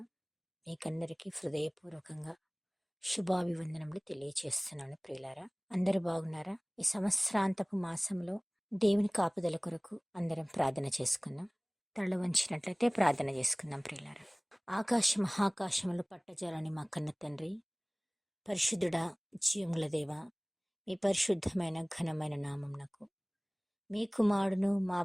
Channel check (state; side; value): identical; both; correlation 1.00